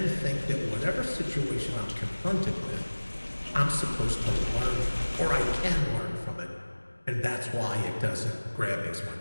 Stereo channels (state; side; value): inverted; both; correlation -1.00